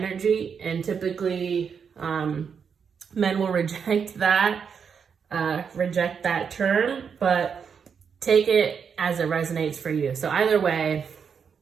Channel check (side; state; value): left; quieter; 6.6 dB